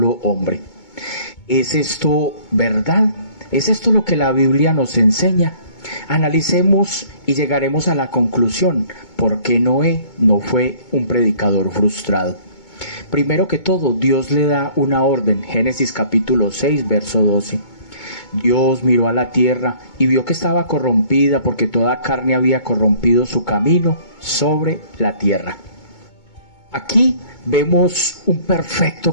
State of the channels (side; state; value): right; late; 2.2 ms